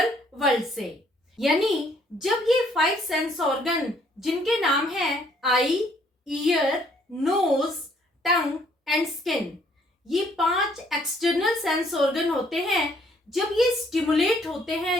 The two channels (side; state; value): both; normal; correlation 0.65